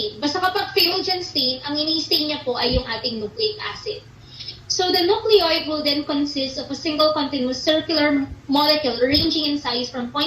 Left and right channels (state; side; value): identical; both; correlation 1.00